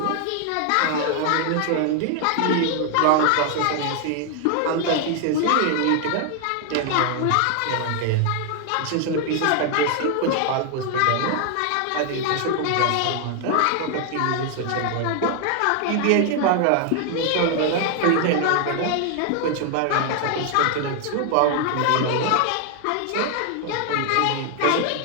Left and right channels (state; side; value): different; both; correlation 0.00